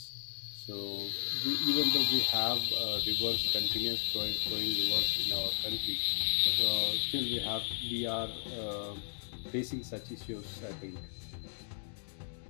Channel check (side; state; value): right; silent; digital silence